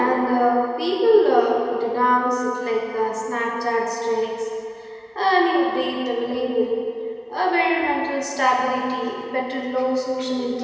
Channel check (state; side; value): identical; both; correlation 1.00